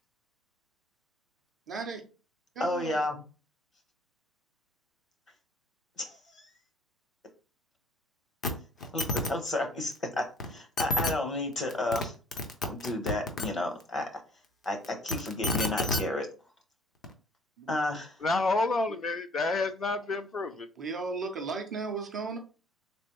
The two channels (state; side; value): normal; both; correlation 0.57